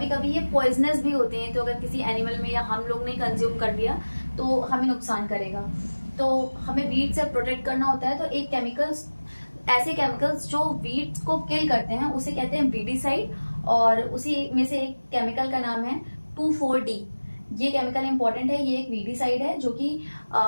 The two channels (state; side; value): inverted; both; correlation -1.00